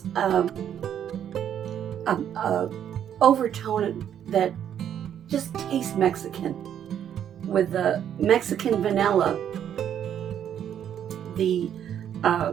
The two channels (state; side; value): quieter; left; 9.6 dB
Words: a overtone that just tastes Mexican, with the Mexican vanilla, the